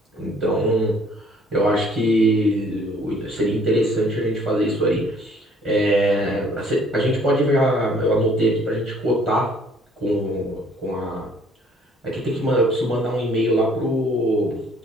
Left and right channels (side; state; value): both; normal; correlation 0.59